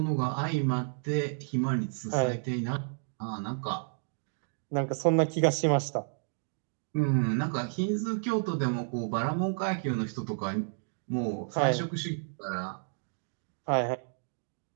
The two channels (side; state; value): left; silent; digital silence